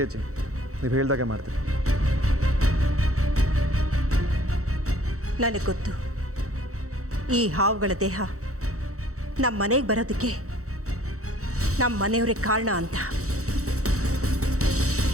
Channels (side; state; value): left; late; 0.65 ms